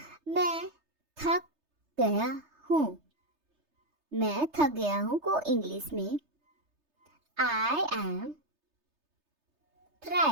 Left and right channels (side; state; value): left; late; 3.3 ms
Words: मैं थक गया हूँ। मैं थक गया हूँ को इंग्लिश में I am